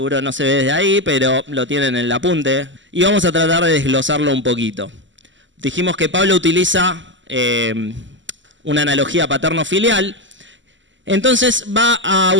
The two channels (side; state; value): left; late; 0.54 ms